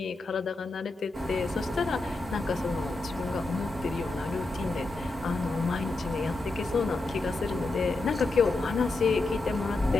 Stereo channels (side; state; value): right; quieter; 3.2 dB